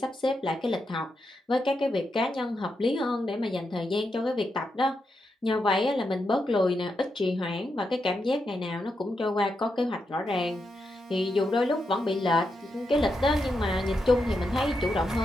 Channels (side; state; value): both; normal; correlation 0.85